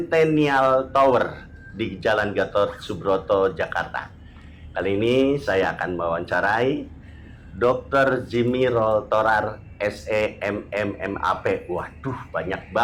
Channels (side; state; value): both; identical; correlation 1.00